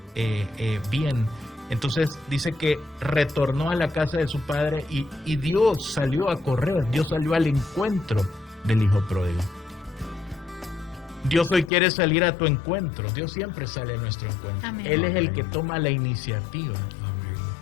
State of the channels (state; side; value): drops out; right; at 11.7 s